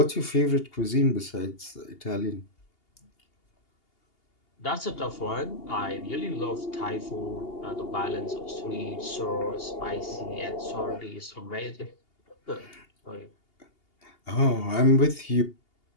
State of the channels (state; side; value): late; right; 2.8 ms